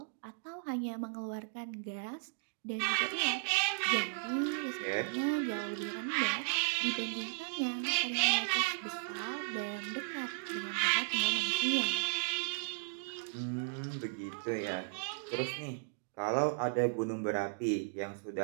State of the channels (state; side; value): silent; left; digital silence